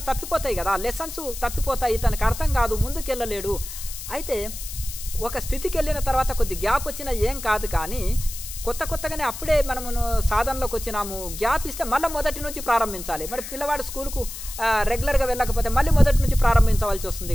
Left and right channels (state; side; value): noise; left; hiss, 10 dB below the sound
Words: తప్పిపోతాయి కదా, లెసన్స్ తప్పిపోతాయి. తనకు అర్థం కాదు, ముందుకెళ్ళలేడు. అయితే ఒక స్థితికి వెళ్ళిన తర్వాత కొద్ది గ్యాప్ వచ్చినా ఏం కాదు. కానీ కొత్తగానే అప్పుడే మనము సాధనలోకి వచ్చినాము, గ్యాప్ ఇస్తే మళ్ళీ మొదటి నుంచి ప్రారంభించాలి. మరి పిల్లవాడు స్కూల్కు రెగ్యులర్గా వెళ్ళకపోతే మళ్ళీ మొదటి నుంచి ప్రారంభించవలసి